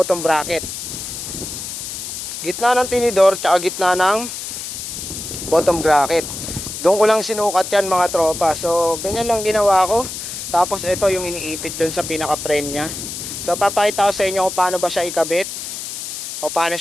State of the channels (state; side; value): noise; left; hiss, 7 dB below the sound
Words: bracket. Gitna ng tinidor tsaka gitna ng bottom bracket. Doon ko lang sinukat yan mga tropa. So ganyan lang ginawa ko. Tapos ito yung iniipit doon sa pinaka frame nya. So papakita ko sa inyo kung paano ba siya ikabit o paano